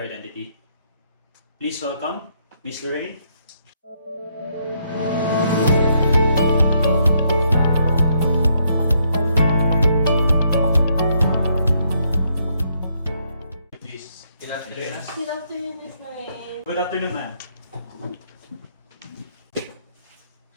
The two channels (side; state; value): both; inverted; correlation -0.74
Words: identity. Please welcome Miss Lorraine. Please. Good afternoon. Good afternoon, Miss Lorraine. Good afternoon, ma'am.